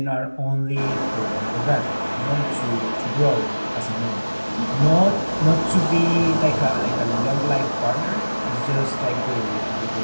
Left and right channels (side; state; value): both; inverted; correlation -1.00